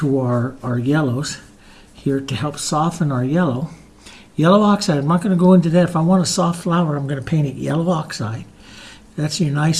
our yellows here to help soften our yellow. Yellow oxide, I'm not going to go into that. If I want a soft flower, I'm going to paint it yellow oxide. That's your nice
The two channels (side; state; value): both; identical; correlation 1.00